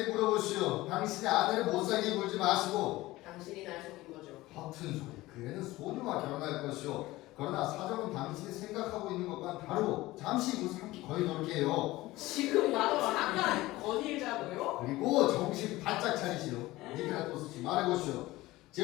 물어보시오. 당신의 아내를 못 살게 굴지 마시고. 당신이 날 속인 거죠. 허튼 소리. 그 애는 소녀와 결혼할 것이오. 그러나 사정은 당신이 생각하고 있는 것과는 다르고 잠시 후 삼기 거의 놀게요. 지금 나도 잠깐 건의자고요. 그리고 정신 바짝 차리시오. 니케라토스 씨 말해보시오.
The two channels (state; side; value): quieter; right; 18.4 dB